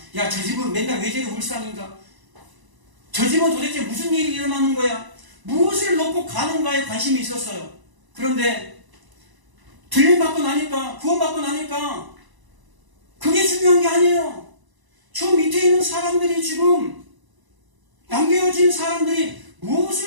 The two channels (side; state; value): left; late; 1.0 ms